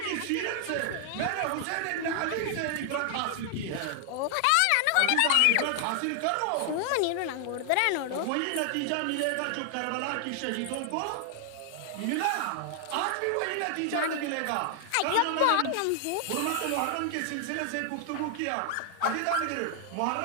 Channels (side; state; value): both; different; correlation 0.00